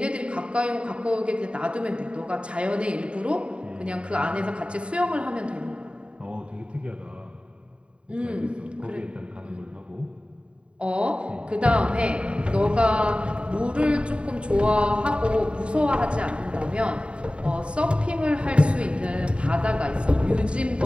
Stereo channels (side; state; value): left; late; 0.056 ms